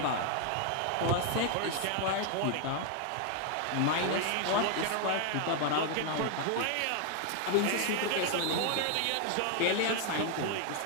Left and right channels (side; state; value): both; different; correlation 0.00